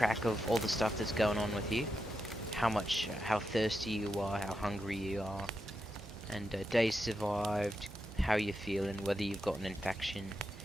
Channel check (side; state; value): both; normal; correlation 0.86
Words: of all the stuff that's going on with you. How thirsty you are, how hungry you are, and days survived, how you're feeling, whether you've got an infection,